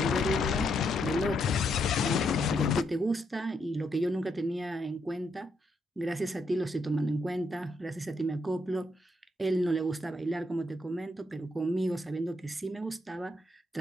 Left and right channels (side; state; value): both; normal; correlation 0.77